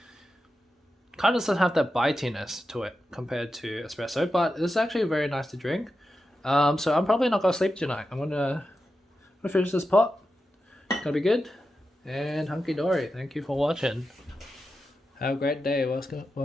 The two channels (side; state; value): both; normal; correlation 0.90